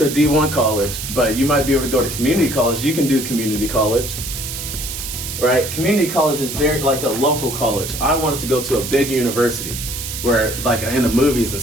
a D1 college, but you might be able to go to community college. You can do community college, right? Community college is very like a local college. I wanted to go to a big university where like in the movies and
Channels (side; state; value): right; noise; hiss, 7 dB below the sound